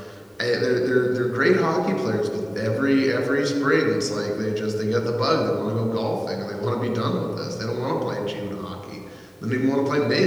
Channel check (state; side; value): identical; both; correlation 1.00